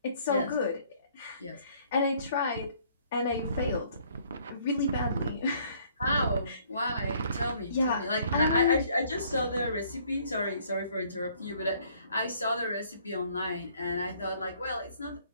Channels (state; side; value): inverted; both; correlation -0.62